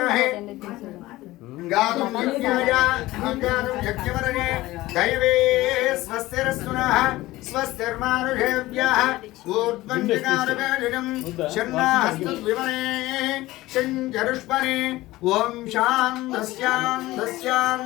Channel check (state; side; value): quieter; right; 17.9 dB